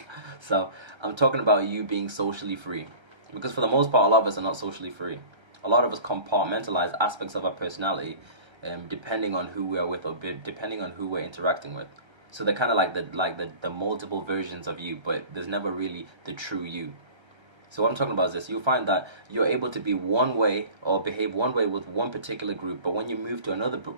talking about you being socially free. Because for the most part, a lot of us are not socially free. A lot of us compartmentalize aspects of our personality depending on who we are with or depending on who we're interacting with. So they're kind of like the multiple versions of you, but there's never really the true you. So what I'm talking about is this: you'll find that you're able to be one way or behave one way with one particular group, but when you move to another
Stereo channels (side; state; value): left; late; 1.3 ms